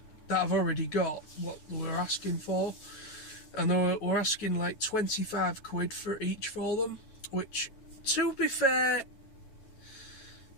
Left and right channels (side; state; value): right; late; 9.2 ms